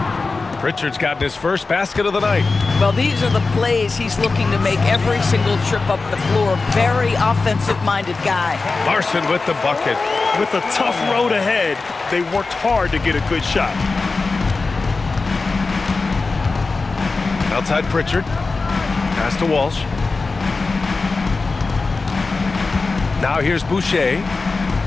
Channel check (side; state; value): right; quieter; 3.9 dB